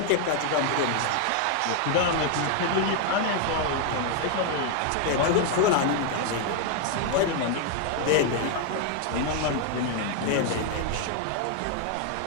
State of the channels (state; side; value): different; both; correlation 0.00